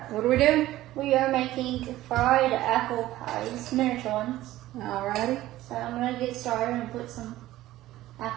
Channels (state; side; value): quieter; left; 15.5 dB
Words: what are we doing? We are making fried apple pies, miniature ones. Alrighty. So I'm gonna get started and put some